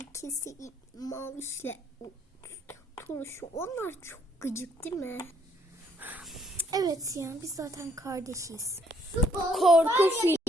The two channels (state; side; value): normal; both; correlation 0.67